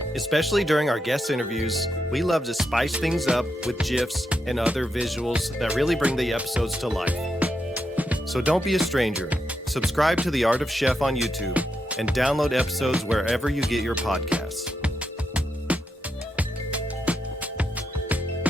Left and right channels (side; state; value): both; normal; correlation 0.84